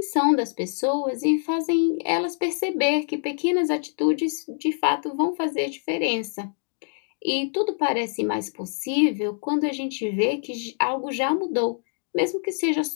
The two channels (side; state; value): right; silent; digital silence